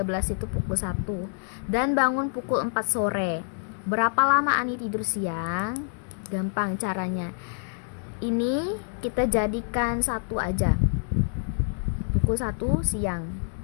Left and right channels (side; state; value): right; silent; 60 dB below the other